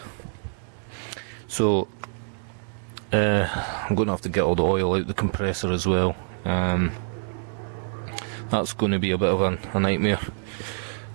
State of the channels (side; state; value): left; silent; digital silence